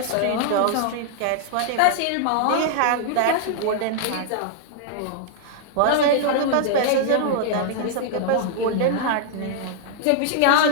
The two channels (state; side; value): different; both; correlation -0.01